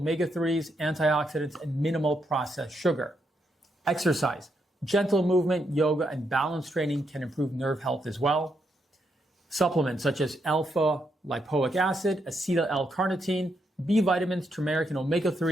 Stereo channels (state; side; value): normal; both; correlation 0.79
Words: antioxidants, and minimal processed sugar. Exercise, gentle movement, yoga, and balance training can improve nerve health as well. Supplements such as alpha-lipoic acid, acetyl-L-carnitine, B vitamins, turmeric, and